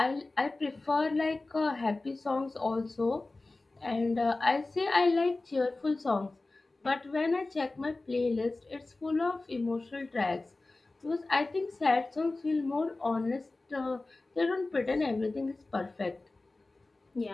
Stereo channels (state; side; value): quieter; right; 3.2 dB